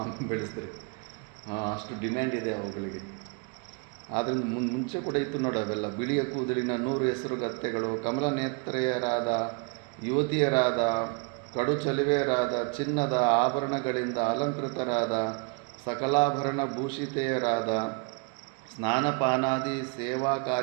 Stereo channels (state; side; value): quieter; left; 32.3 dB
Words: ಬೆಳೆಸಿದ್ರೆ ಅಷ್ಟು ಡಿಮ್ಯಾಂಡ್ ಇದೆ ಅವುಗಳಿಗೆ. ಆದ್ದರಿಂದ ಮುಂಚೆ ಕೂಡ ಇತ್ತು ನೋಡಿ ಅವೆಲ್ಲ. ಬಿಳಿಯ ಕೂದಲಿನ 100 ಹೆಸರುಗತ್ತೆಗಳು, ಕಮಲ ನೇತ್ರೆಯರಾದ ಯುವತಿಯರಾದ, ಕಡು ಚಲುವೆಯರಾದ, ಚಿನ್ನದ ಆಭರಣಗಳಿಂದ ಅಲಂಕೃತರಾದ, ಸಕಲಾಭರಣ ಭೂಷಿತೆಯರಾದ, ಸ್ನಾನಪಾನಾದಿ ಸೇವಾ